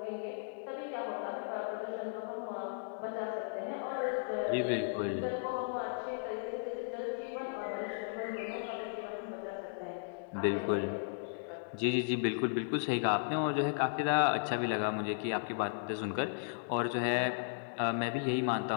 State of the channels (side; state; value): right; silent; digital silence